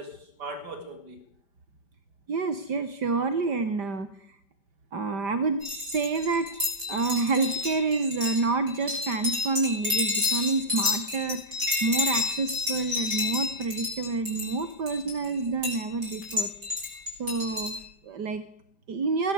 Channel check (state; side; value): late; left; 5.1 ms